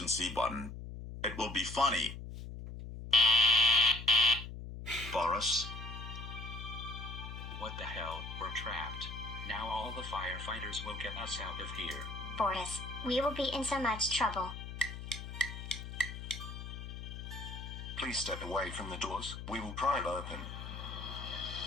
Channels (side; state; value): left; noise; hum, 9 dB below the sound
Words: button. It will be funny. Boris? What the hell? We're trapped. Now all the firefighters will get us out of here. Boris, we will be in so much trouble. Please step away from the doors. We will pry it open.